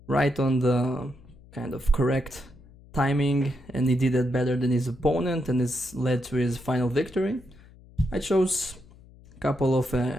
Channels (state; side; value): noise; left; hum, 23 dB below the sound